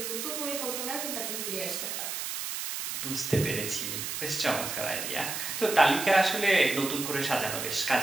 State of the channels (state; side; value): noise; right; hiss, 4 dB below the sound